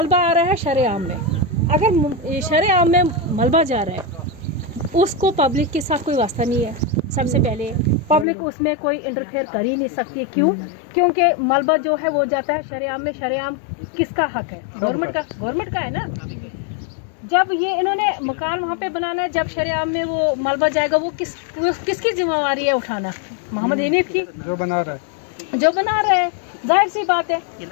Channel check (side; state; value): right; drops out; at 8.2 s